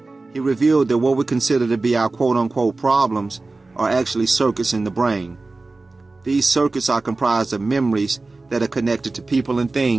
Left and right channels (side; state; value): left; quieter; 3.4 dB